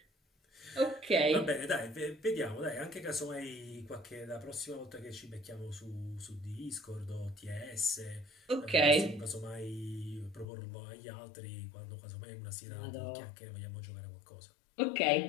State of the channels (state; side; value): drops out; right; at 10.5 s